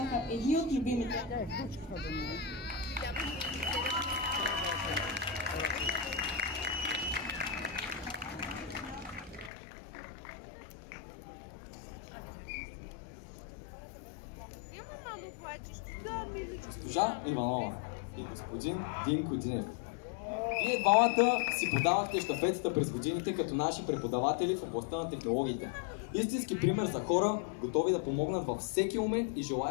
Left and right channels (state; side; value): drops out; right; at 9.5 s